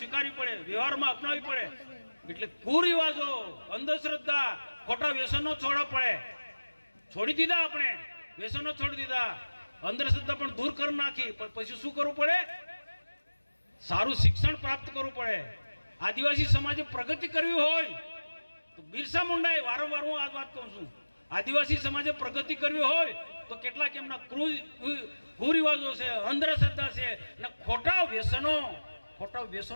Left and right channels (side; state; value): both; inverted; correlation -1.00